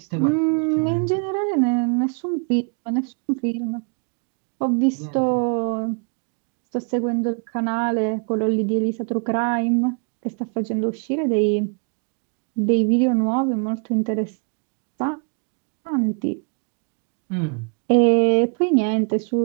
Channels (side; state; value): left; quieter; 38.6 dB